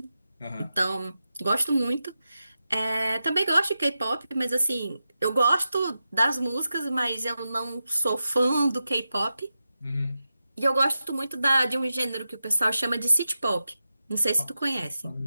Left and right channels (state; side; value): inverted; both; correlation -0.91